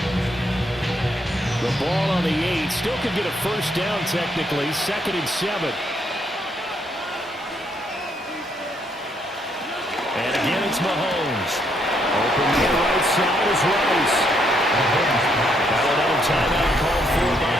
The ball on the 8. Still could get a first down technically. 2nd and 7. And again it's Mahomes. Open to the right side is Rice. Now another timeout called for by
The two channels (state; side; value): normal; both; correlation 0.73